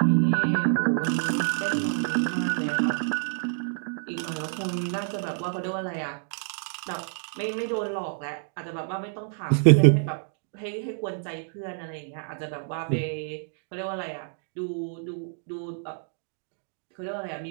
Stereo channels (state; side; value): silent; left; 59 dB below the other